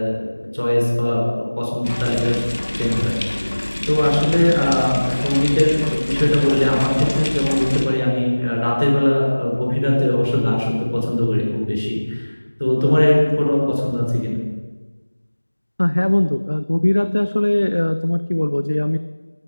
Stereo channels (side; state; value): both; inverted; correlation -1.00